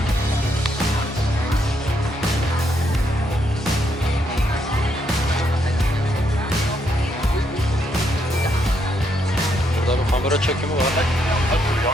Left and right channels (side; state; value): both; normal; correlation 0.76